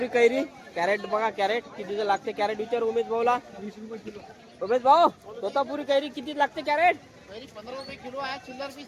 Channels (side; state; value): both; identical; correlation 1.00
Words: कैरी. कॅरेट बघा कॅरेट कितीचं लागते कॅरेट विचार उमेश भाऊला. 20 रुपये किलो. उमेश भाऊ तोतापुरी कैरी किती लागते कॅरेट. 15 रुपये किलो आहे. चिल्लर